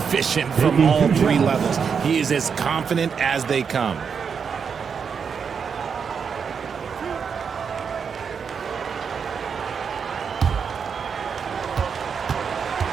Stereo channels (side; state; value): left; quieter; 6.4 dB